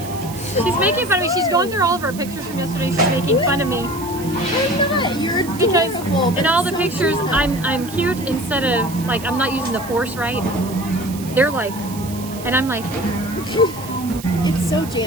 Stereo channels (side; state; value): right; noise; hiss, 15 dB below the sound